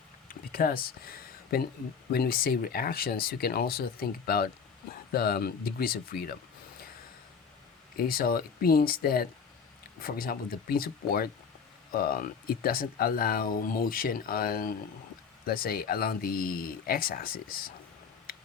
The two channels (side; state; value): right; quieter; 6.1 dB